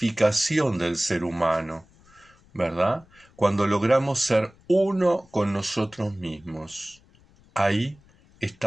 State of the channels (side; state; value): left; noise; rumble, 29 dB below the sound